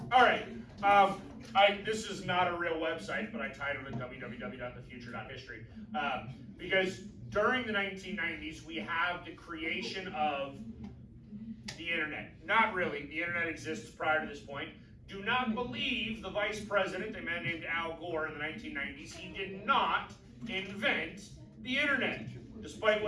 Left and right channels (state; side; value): identical; both; correlation 1.00